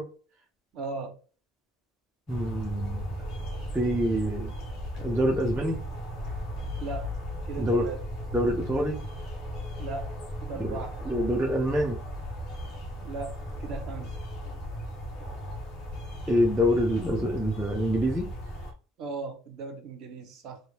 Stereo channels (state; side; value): normal; both; correlation 0.71